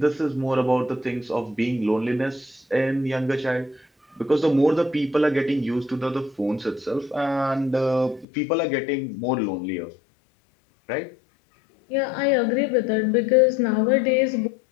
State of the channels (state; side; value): drops out; right; at 8.2 s